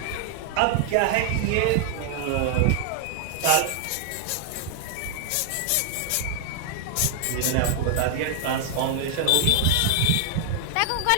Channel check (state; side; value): different; both; correlation 0.00